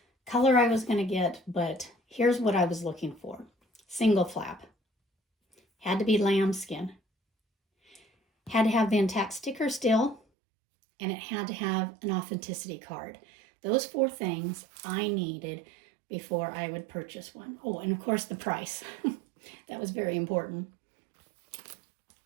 color I was going to get, but here's what I was looking for. Single flap. Had to be lambskin. Had to have the intact sticker still, and it had to have an authenticity card. Those 4 things I needed before I would purchase one. Oh, and of course the price. That was very important.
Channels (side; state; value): left; drops out; at 10.2 s